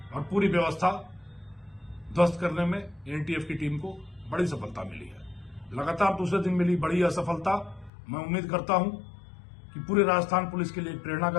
और पूरी व्यवस्था ध्वस्त करने में एनटीएफ की टीम को बड़ी सफलता मिली है। लगातार दूसरे दिन मिली बड़ी असफलता मैं उम्मीद करता हूं कि पूरे राजस्थान पुलिस के लिए प्रेरणा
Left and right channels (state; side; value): drops out; right; at 7.9 s